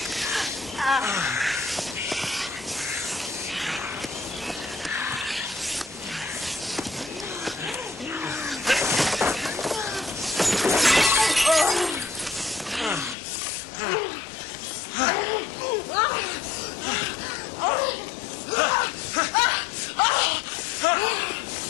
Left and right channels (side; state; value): right; drops out; at 13.2 s